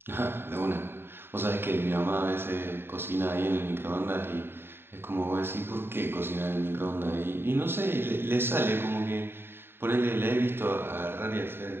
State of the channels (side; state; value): left; late; 0.11 ms